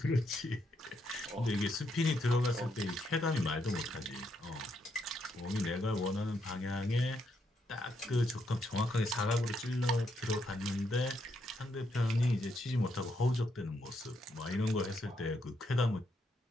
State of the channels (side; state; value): both; normal; correlation 0.78